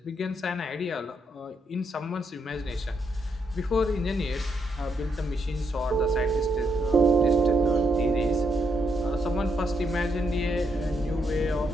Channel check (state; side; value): normal; both; correlation 0.77